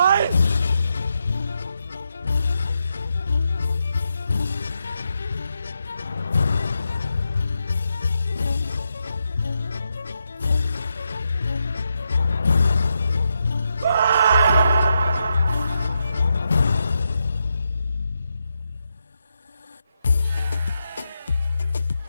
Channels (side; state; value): both; inverted; correlation -0.84